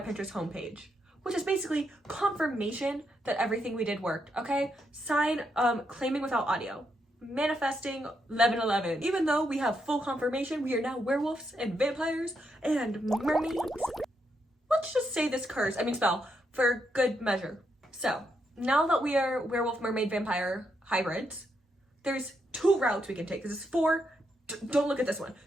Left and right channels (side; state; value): both; normal; correlation 0.80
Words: homepage, which is basically confirmation that everything we did worked, okay? Sign, claiming without audio. Manifesting 1111. Even though we have full confirmation, we are now werewolves and vampires and mermaids. Let's just say this spell for good measure. So, now that we are werewolf, mermaid, vampire hybrids, there's 2 routes we can take. This is 4, don't look at this one.